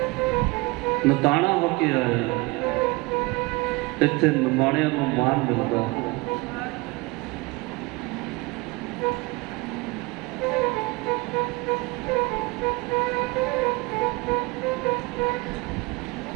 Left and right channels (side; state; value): left; quieter; 24.4 dB